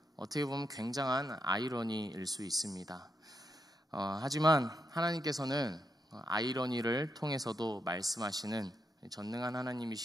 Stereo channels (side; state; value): both; normal; correlation 0.81